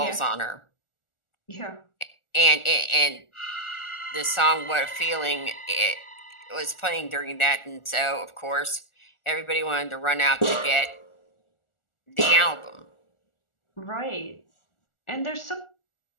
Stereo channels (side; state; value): right; late; 1.4 ms